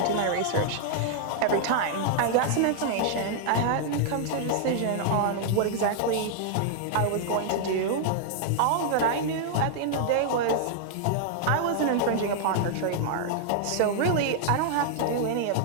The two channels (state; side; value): different; both; correlation -0.01